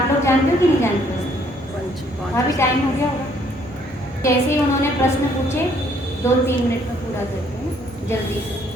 लोग जानते हो कि नहीं जानते? अभी टाइम हो गया होगा। जैसे ही उन्होंने प्रश्न पूछे 2-3 मिनट में पूरा करते हैं जल्दी से।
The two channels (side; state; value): both; normal; correlation 0.65